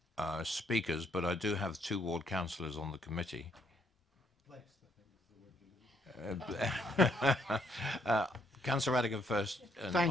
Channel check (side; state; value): both; normal; correlation 0.71